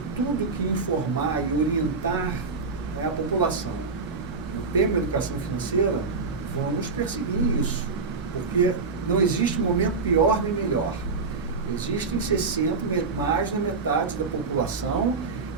tudo que informar e orientar, né, a população no tema da educação financeira, vamos perseguir isso. Porque não existe momento pior nem melhor. Existem mais da metade da população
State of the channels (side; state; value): left; quieter; 4.4 dB